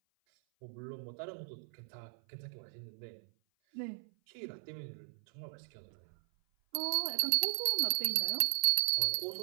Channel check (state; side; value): silent; left; 53 dB below the other